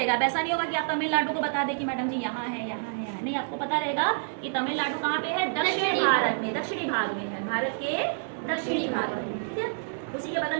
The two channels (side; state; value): left; silent; 59 dB below the other